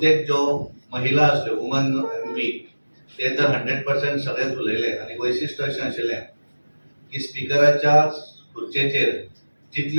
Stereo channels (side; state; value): both; inverted; correlation -1.00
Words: जो महिला असल्यो वुमन एमपी ते तर 100% सगळेच उलयले. आणि वैशिष्ट्य अशें आशिल्लें की स्पिकराच्या खुर्चेचेर